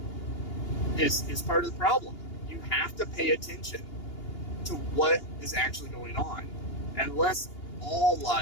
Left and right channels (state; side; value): late; right; 2.8 ms